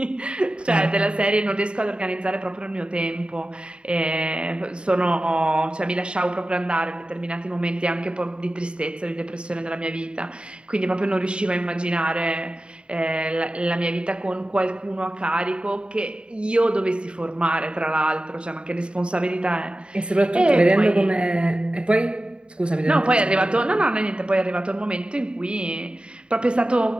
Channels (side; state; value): left; late; 0.053 ms